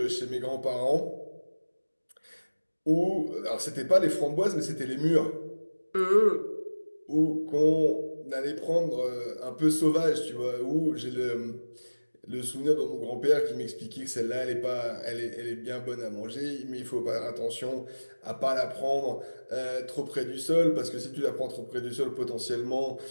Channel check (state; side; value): inverted; both; correlation -1.00